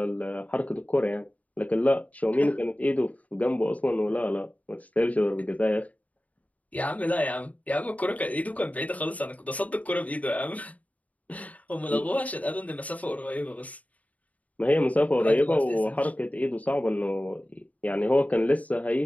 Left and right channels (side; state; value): right; late; 0.071 ms